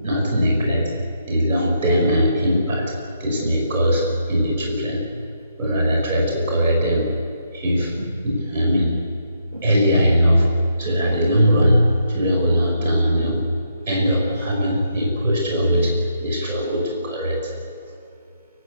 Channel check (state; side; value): inverted; both; correlation -0.78